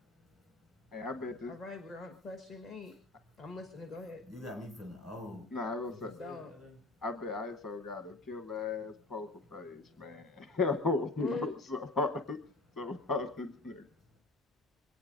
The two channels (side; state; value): right; quieter; 3.1 dB